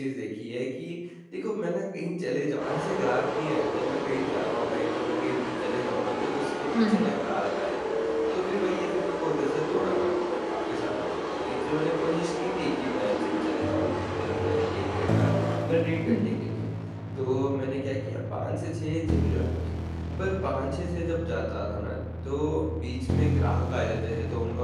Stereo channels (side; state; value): both; identical; correlation 1.00